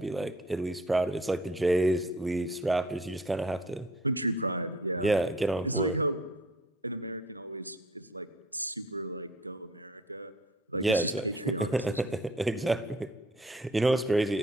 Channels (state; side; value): normal; both; correlation 0.53